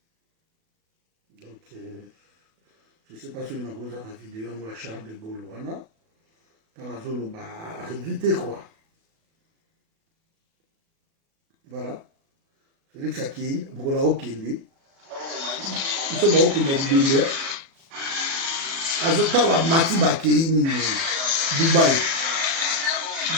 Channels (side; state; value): left; late; 36 ms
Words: Donc, je ne sais pas si vous avez la vidéo, moi, Charles de Gaulle, voilà. Dans la zone, bah, éviter quoi. Voilà. Félix Akei, Bokola Okende. Ils sont beaucoup de Bibé. Azota wa mati bakei ni Dubaï. Ils